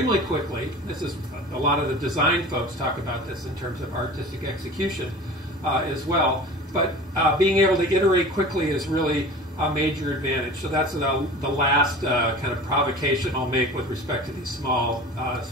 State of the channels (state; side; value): normal; both; correlation 0.38